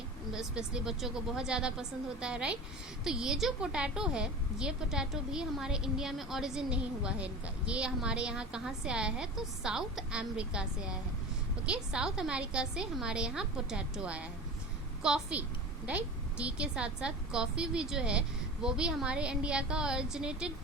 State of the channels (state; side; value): normal; both; correlation 0.32